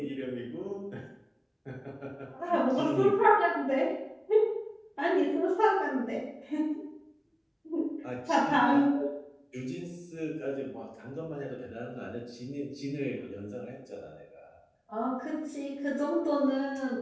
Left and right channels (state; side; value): identical; both; correlation 1.00